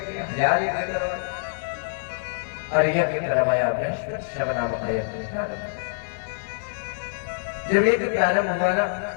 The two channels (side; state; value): right; silent; digital silence